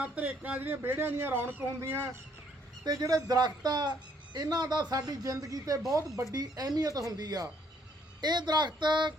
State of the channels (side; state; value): both; normal; correlation 0.66